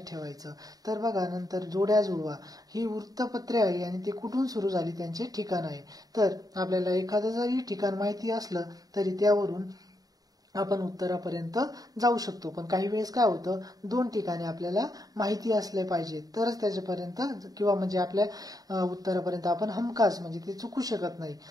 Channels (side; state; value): left; late; 0.18 ms